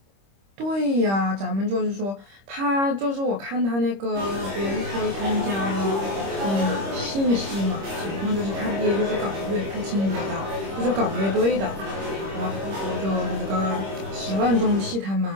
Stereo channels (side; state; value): left; late; 25 ms